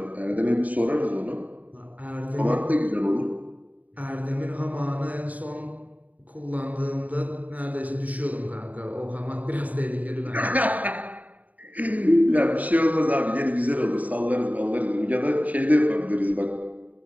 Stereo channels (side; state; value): left; late; 0.073 ms